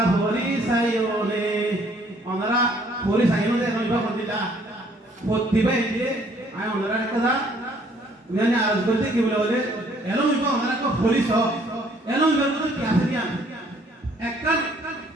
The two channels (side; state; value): both; normal; correlation 0.62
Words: হরি সাইওনে আমরা হরি সাইওনে দেখবা কোনটা প্রতিভা ইয়ে আয় আমরা কথা মানে আজ বলতে কি বলে এলম ইবা আমরা কো পুলিশ हो এলম বেরো কি আছে দিয়া একখান